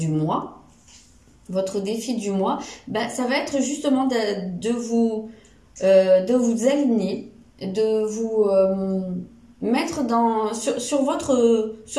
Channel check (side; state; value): both; identical; correlation 1.00